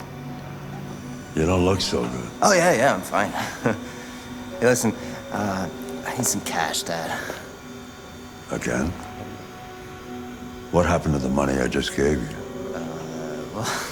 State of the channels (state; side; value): identical; both; correlation 1.00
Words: You don't look so good. Oh, yeah, I'm fine. Hey, listen, I need some cash, Dad. Again? What happened to the money I just gave you?